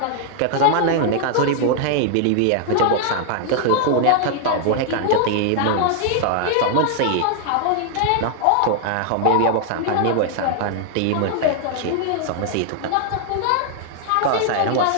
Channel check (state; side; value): different; both; correlation 0.00